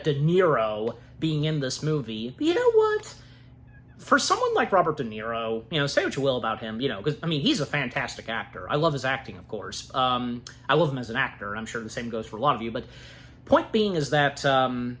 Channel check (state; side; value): identical; both; correlation 1.00